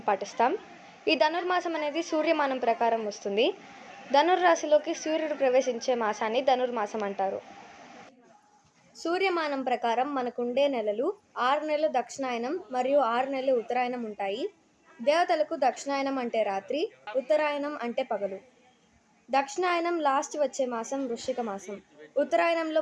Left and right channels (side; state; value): both; identical; correlation 1.00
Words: పాటిస్తాం. ఈ ధనుర్మాసం అనేది సూర్యమానం ప్రకారం వస్తుంది. ధనుర్రాశిలోకి సూర్యుడు ప్రవేశించే మాసాన్ని ధనుర్మాసం అంటారు. సూర్యమానం ప్రకారం మనకుండే నెలలు 6 నెలలు దక్షిణాయనం మరియు 6 నెలలు ఉత్తరాయణం ఉంటాయి. దేవతలకు దక్షిణాయనం అంటే రాత్రి, ఉత్తరాయణం అంటే పగలు. దక్షిణాయనం లాస్ట్ వచ్చే మాసం వృశ్చిక మాసం,